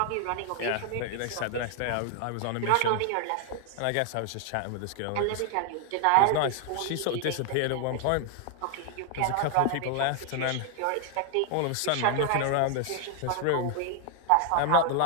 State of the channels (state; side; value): different; both; correlation 0.00